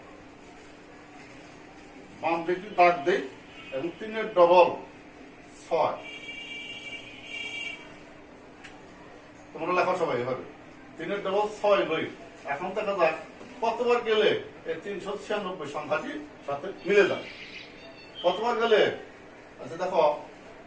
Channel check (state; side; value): identical; both; correlation 1.00